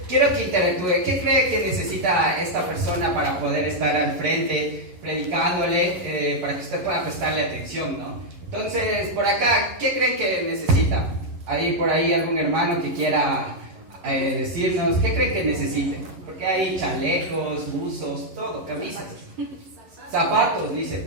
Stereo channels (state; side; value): late; left; 11 ms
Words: quiero que interactúe. ¿Qué cree que necesita esta persona para poder estar al frente, predicándole, para que usted pueda prestarle atención, ¿no? Entonces, por acá, ¿qué creen que necesita? Hay por ahí algún hermano que quiera decirnos, ¿qué creen que necesite? Porque hay chalecos, buzos, todo, camisas. Zapatos, dice,